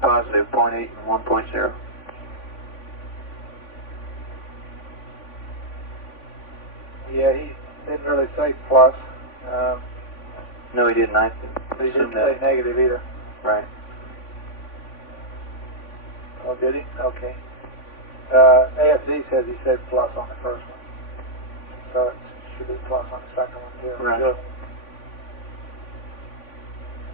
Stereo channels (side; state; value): right; late; 3.5 ms